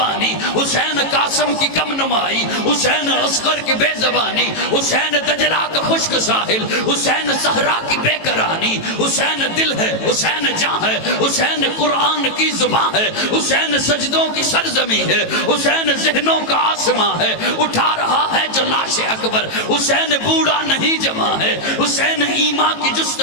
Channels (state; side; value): late; right; 18 ms